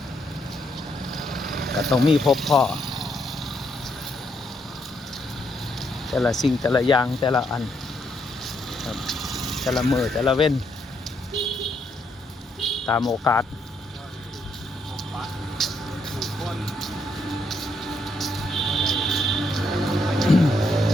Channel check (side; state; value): both; normal; correlation 0.75